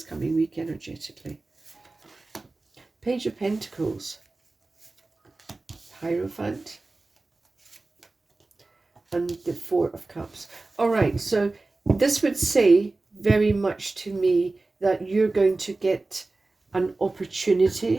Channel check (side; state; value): left; quieter; 3.3 dB